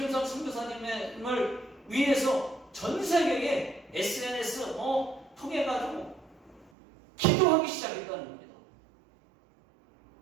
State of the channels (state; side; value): drops out; left; at 6.7 s